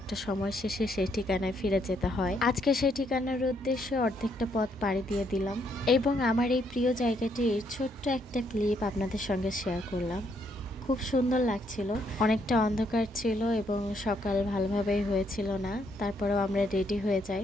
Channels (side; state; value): both; normal; correlation 0.73